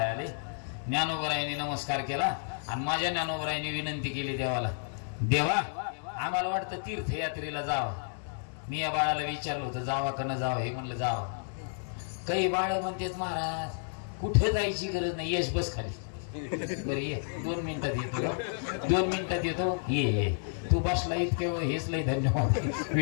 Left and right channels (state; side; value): silent; right; digital silence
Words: आले. ज्ञानोबरायांनी नमस्कार केला आणि माझ्या ज्ञानोबरायांनी विनंती केली देवाला, देवा आम्हाला वाटतं तीर्थयात्रेला जावं. मी या बाळाला विचारलं होतं, जावा का न जावं. हे म्हणलं जावं. काही बाळ म्हणतात, महाराज कुठे जायची गरज नाही, यश बस खाली. बरं ये, 2 मिनिटात येतो, 2 मिनिटात येतो, ये. तू बसला इतके हेच लय धन्यवाद.